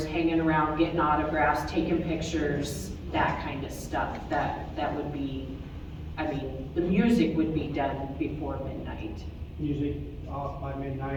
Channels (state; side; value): identical; both; correlation 1.00